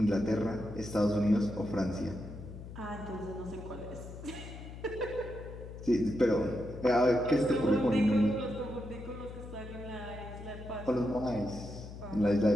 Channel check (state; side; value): noise; left; hum, 12 dB below the sound